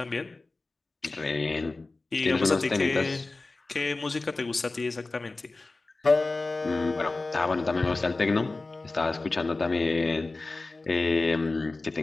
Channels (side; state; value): right; quieter; 3.4 dB